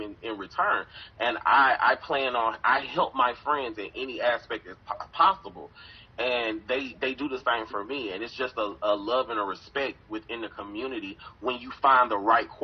in return. And I help my friends in any aspect as possible, and they do the same for me. And it's just a love and a respect within the community when you find the right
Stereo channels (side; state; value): both; identical; correlation 1.00